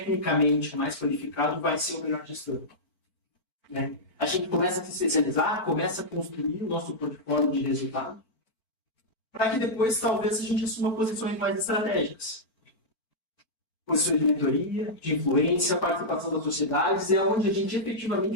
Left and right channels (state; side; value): late; right; 4.5 ms